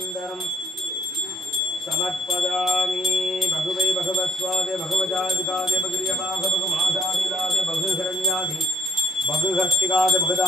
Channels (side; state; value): both; normal; correlation 0.68